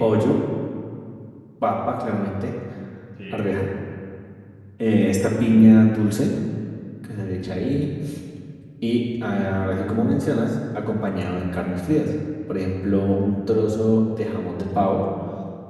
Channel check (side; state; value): both; identical; correlation 1.00